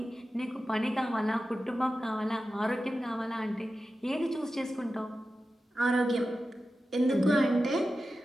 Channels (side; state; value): both; normal; correlation 0.93